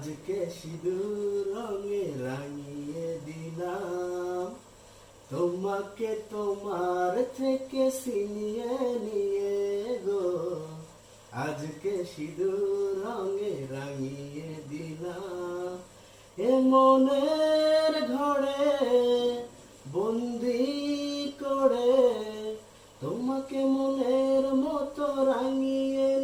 সিঁদুর রঙে রাঙিয়ে দিলাম। তোমাকে তোমার থেকে ছিনিয়ে নিয়ে গো আজকে সিঁদুর রঙে রাঙিয়ে দিলাম। এ মনের ঘরে বন্দি করে তোমাকে মনের মতো রাঙিয়ে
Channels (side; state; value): both; identical; correlation 1.00